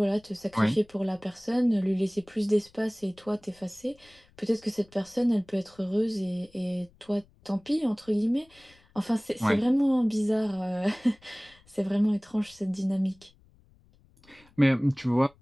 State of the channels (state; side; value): noise; left; rumble, 29 dB below the sound